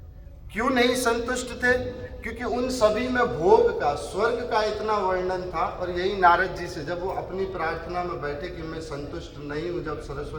क्यों नहीं संतुष्ट थे? क्योंकि उन सभी में भोग का, स्वर्ग का इतना वर्णन था। और यही नारद जी से जब वो अपनी प्रार्थना में बैठे कि मैं संतुष्ट नहीं हूँ, जब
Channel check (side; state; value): both; identical; correlation 1.00